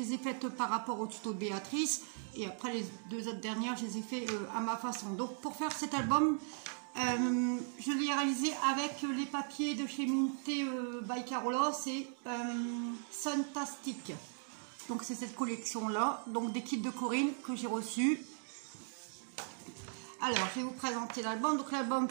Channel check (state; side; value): silent; left; 53 dB below the other